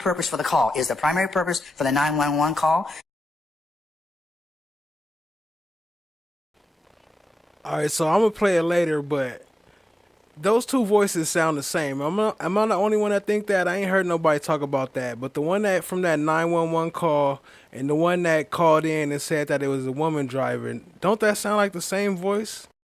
for the call. Is the primary purpose for the 911 call? All right, so I'm gonna play it later, but those two voices sound the same. Am I the only one that think that? I ain't heard nobody talk about that. But the one that from that 911 call and the one that called in and said that it was a woman driving, don't that sound like the same voice?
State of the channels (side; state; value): both; normal; correlation 0.95